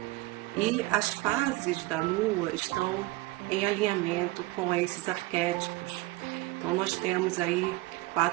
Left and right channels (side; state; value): left; quieter; 19.7 dB